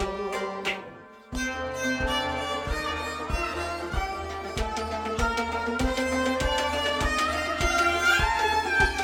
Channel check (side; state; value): both; identical; correlation 1.00